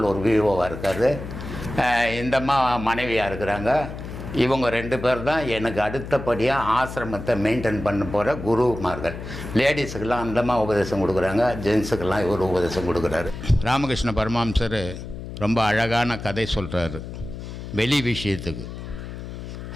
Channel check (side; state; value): left; noise; hum, 10 dB below the sound